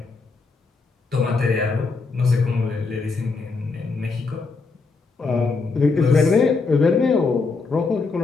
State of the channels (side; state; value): right; quieter; 4.2 dB